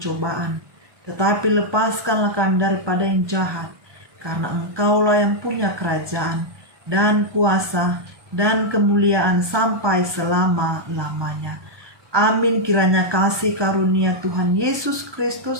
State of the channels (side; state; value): left; late; 1.2 ms